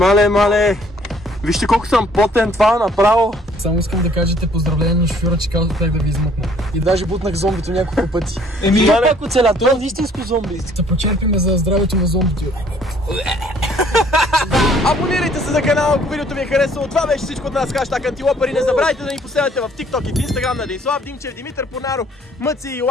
Вижте колко съм потен, това направо. Само искам да кажете поздравление на шофьора, че казах как да ви измъкна. И даже бутнах зомбито няколко пъти. Това пак оцеля, това е истинско зомби. Се почерпиме за здравето на зомбито. Абонирайте се за канала, ако видеото ви е харесало. Това беше всичко от нас, хаштаг Антилопър. И не забравяйте да ни последвате в TikTok и в Instagram на Денислав Димчев, Димитър Понаров, Мъци и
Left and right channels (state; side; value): normal; both; correlation 0.60